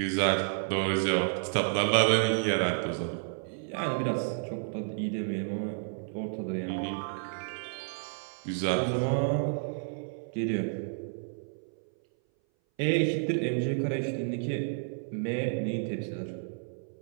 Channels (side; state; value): left; silent; 57 dB below the other